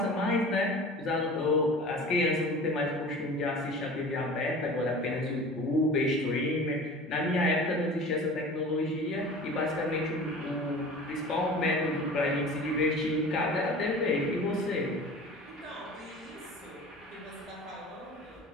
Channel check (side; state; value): both; normal; correlation 0.40